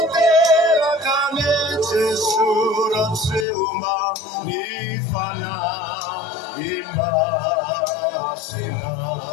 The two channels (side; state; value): right; drops out; at 3.5 s